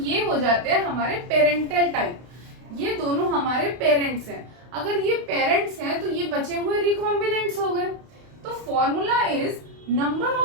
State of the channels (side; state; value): left; late; 32 ms